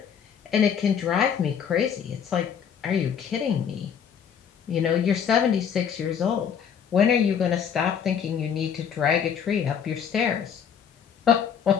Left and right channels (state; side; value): quieter; right; 7.8 dB